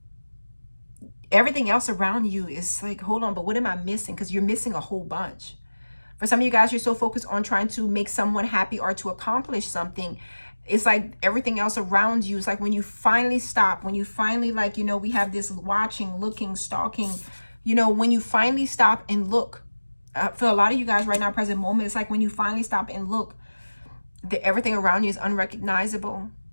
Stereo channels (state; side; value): inverted; both; correlation -1.00